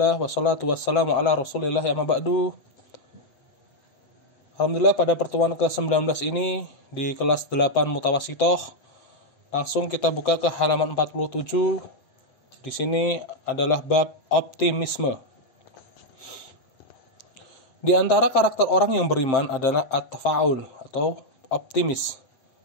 wassalatu wassalamu ala Rasulillah ya maba'du. Alhamdulillah pada pertemuan ke-19 ini di kelas 8 Mutawasitoh, langsung kita buka ke halaman 47. Di sini adalah bab optimisme. Di antara karakter orang yang beriman adalah at-tafa'ul atau optimis,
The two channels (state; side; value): late; right; 7.6 ms